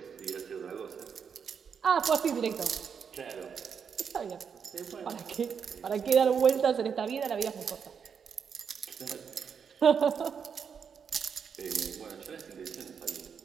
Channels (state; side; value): quieter; left; 6.8 dB